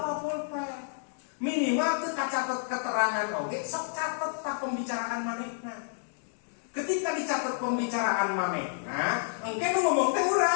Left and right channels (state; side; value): silent; right; digital silence